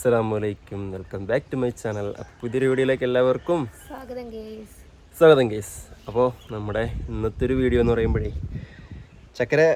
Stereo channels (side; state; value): both; identical; correlation 1.00